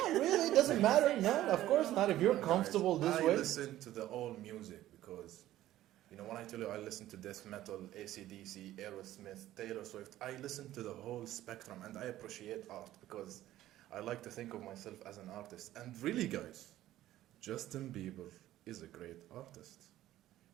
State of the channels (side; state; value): left; quieter; 14.1 dB